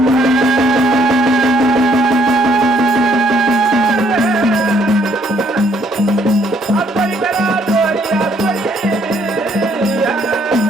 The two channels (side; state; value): both; normal; correlation 0.67